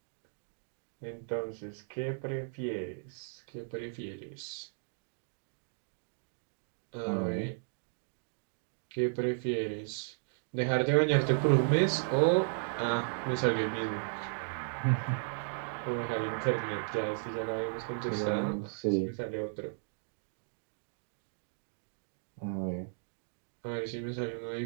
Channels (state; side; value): silent; left; digital silence